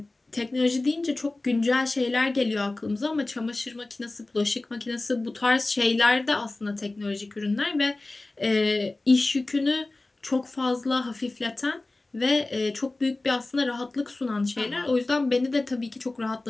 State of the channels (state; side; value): quieter; right; 3.0 dB